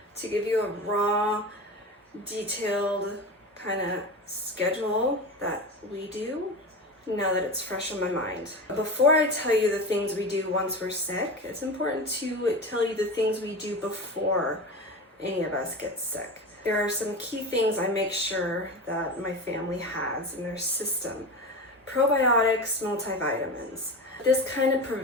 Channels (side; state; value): both; normal; correlation 0.26